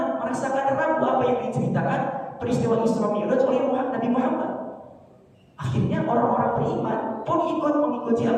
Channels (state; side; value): identical; both; correlation 1.00